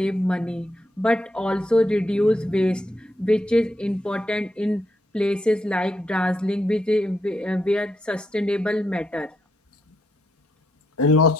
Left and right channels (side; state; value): both; normal; correlation 0.80